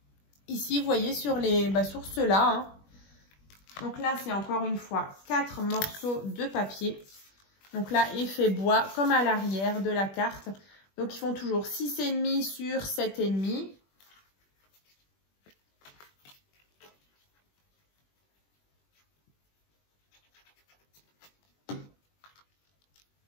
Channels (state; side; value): late; right; 21 ms